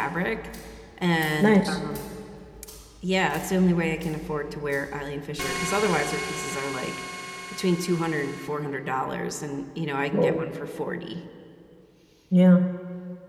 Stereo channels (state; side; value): identical; both; correlation 1.00